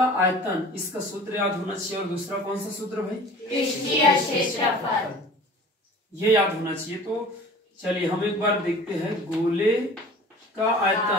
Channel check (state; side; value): normal; both; correlation 0.43